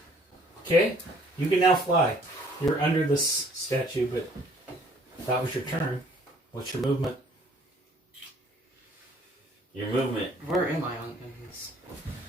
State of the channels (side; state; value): both; normal; correlation 0.58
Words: Okay. You can now fly. You're under this statue, but that was your turn. What's your movement? Your movement. Where am I on in this?